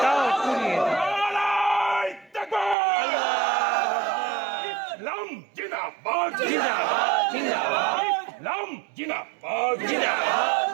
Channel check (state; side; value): drops out; left; at 2.8 s